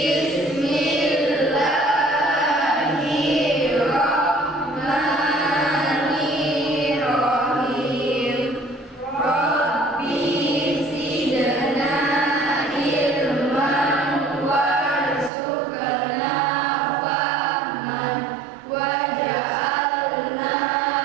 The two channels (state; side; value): drops out; left; at 15.3 s